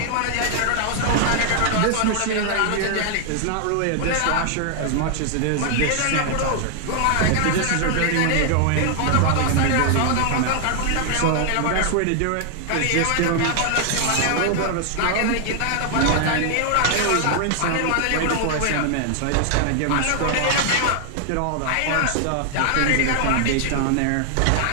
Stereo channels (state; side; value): different; both; correlation 0.00